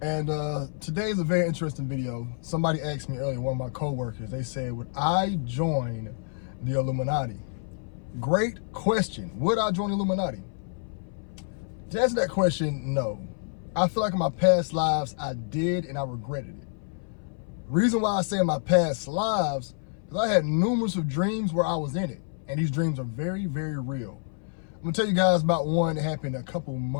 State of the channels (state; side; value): silent; right; 57 dB below the other